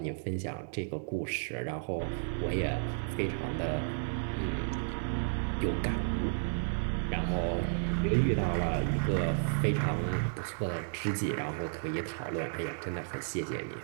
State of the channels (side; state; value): left; silent; 56 dB below the other